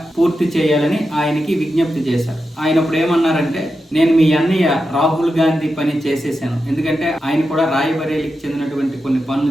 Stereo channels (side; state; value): both; normal; correlation 0.89